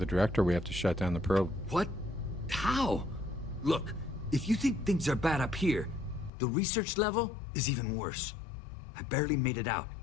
director. We have to shut down the probe. What? How? Look, if you think things are bad up here, the research level is even worse. I barely made it out,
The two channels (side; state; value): right; drops out; at 6.3 s